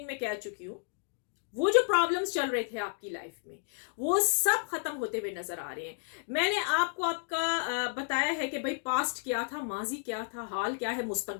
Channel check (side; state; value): right; silent; digital silence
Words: में कह चुकी हूं, वो जो प्रॉब्लम्स चल रहे थे आपकी लाइफ में, वो सब खत्म होते हुए नजर आ रहे हैं। मैंने आपको आपका बताया है कि भाई पास्ट क्या था, माजी क्या था, हाल क्या है,